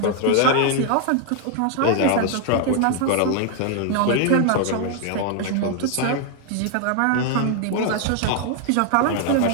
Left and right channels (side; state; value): both; different; correlation 0.00